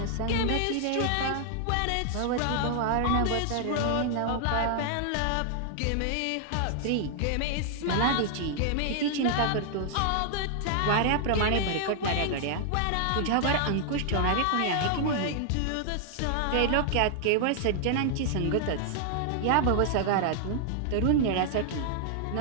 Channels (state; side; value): different; both; correlation -0.01